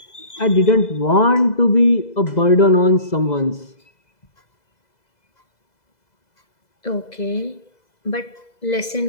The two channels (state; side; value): late; right; 2.0 ms